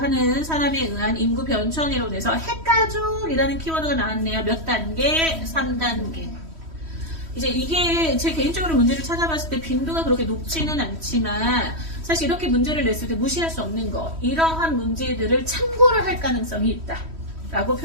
사람에 의한 인구 변천 이론에서 핵가족이라는 키워드가 나왔네요. 몇 단계? 3단계. 이제 이게 제 개인적으로 문제를 찾아봤을 때 빈도가 그렇게 높지는 않지만 사실 이렇게 문제를 냈을 때 무시할 수 없는 거, 이러한 문제들을 참고를 할 가능성이 있다 라고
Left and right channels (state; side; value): late; left; 3.1 ms